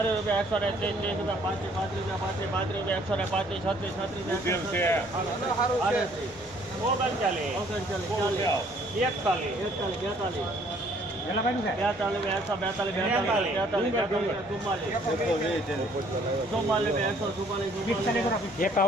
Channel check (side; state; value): both; normal; correlation 0.61